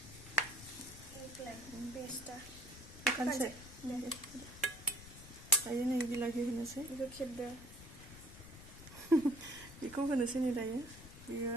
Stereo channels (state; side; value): noise; left; rumble, 16 dB below the sound